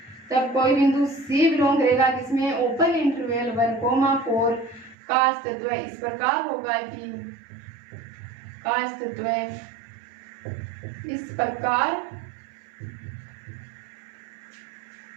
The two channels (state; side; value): drops out; left; at 5.0 s